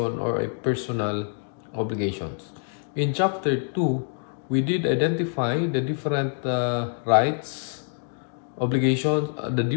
or a personal obligations. In chapter 2, we did identify the different rights, obligations, the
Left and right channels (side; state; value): right; silent; 61 dB below the other